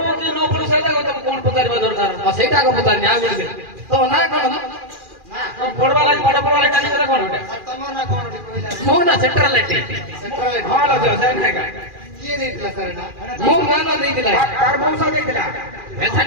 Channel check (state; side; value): late; left; 2.4 ms